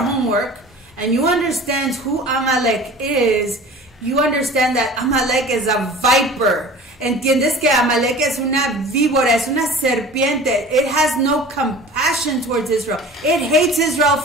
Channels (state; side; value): normal; both; correlation 0.41